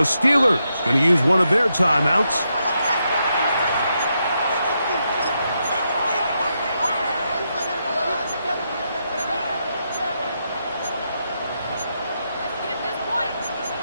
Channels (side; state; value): both; inverted; correlation -0.82